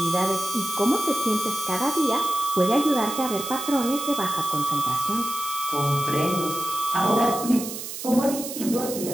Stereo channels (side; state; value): right; noise; hiss, 8 dB below the sound